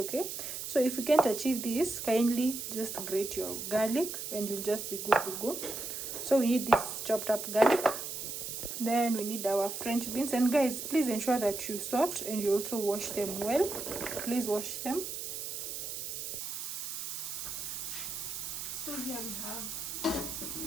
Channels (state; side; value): noise; right; hiss, 6 dB below the sound